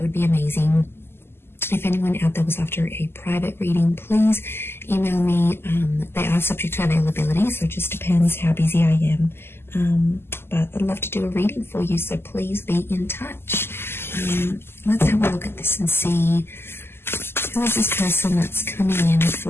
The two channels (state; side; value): late; right; 0.12 ms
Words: would be amazing. If anyone out there was after a private reading, please email me. They are subject to availability, so it just depends how busy I am. But I'd love to do a reading for you, so please be in touch. Let's have a look at this and see who is this person that's coming in